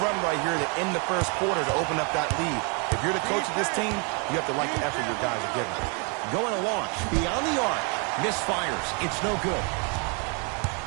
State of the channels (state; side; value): quieter; left; 34.4 dB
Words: run right here to end the first quarter to open up that lead. If you're the coach of this team, you have to like the effort your guys are giving. Going to launch beyond the arc. Misfires. It's no good.